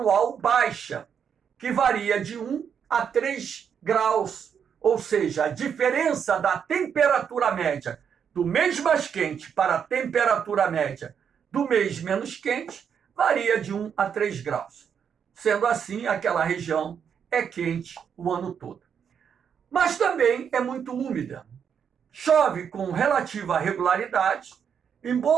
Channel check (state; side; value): quieter; left; 7.5 dB